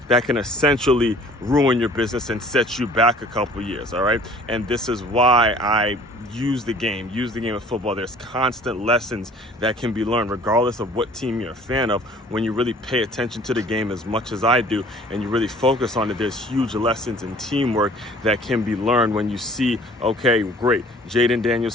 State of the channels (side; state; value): both; normal; correlation 0.51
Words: can essentially ruin your business and set you back a couple years, all right? And this is why I use the game of football. There's constant lessons that can be learned regardless of what team you're a fan of. When you really pay attention to the game as much as I do and you really focus on it, there's huge lessons in teamwork that can be learned when you see, okay, great, Jaden Daniels